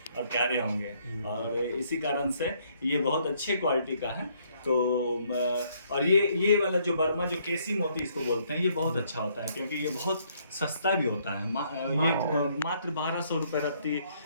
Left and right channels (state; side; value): inverted; both; correlation -0.68